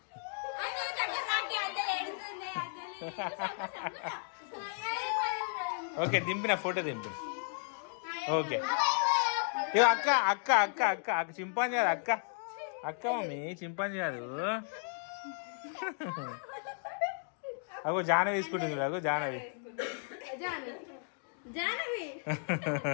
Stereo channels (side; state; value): right; silent; 55 dB below the other